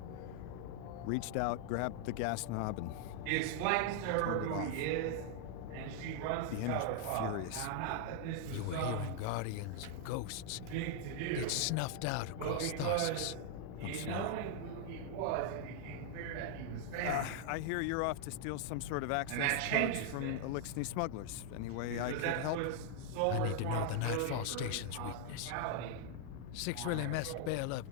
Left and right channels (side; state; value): both; different; correlation 0.00